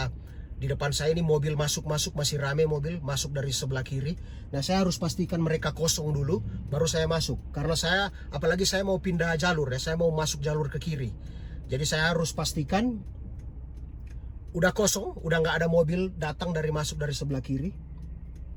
di depan saya ini mobil masuk masih rame mobil masuk dari sebelah kiri. Nah saya harus pastikan mereka kosong dulu baru saya masuk, karena apalagi saya mau pindah jalur ya, saya mau masuk jalur ke kiri. Jadi saya harus pastikan udah kosong, udah nggak ada mobil datang masuk dari sebelah kiri,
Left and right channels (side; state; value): both; identical; correlation 1.00